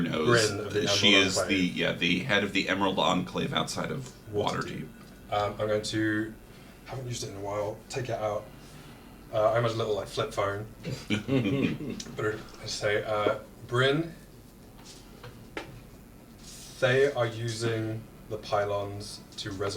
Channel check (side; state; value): both; identical; correlation 1.00